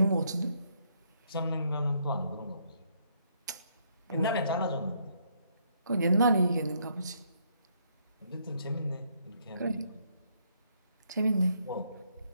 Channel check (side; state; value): both; inverted; correlation -0.71